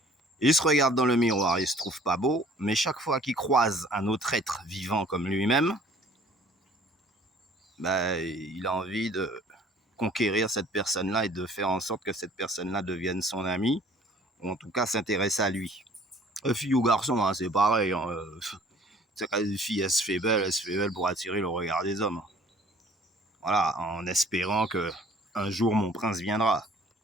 Il se regarde dans le miroir, il se trouve pas beau, mais chaque fois qu'il croise un autre être vivant comme lui-même, ben, il a envie de conquérir cette personne-là et de faire en sorte que cette personne-là devienne son ami, ou en tout cas s'intéresse à lui. Fille ou garçon, hein, c'est pareil, hein. Quand une fille, elle se fait belle pour attirer le regard des hommes. Voilà, en espérant que un jour mon prince viendra.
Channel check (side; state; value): both; normal; correlation 0.54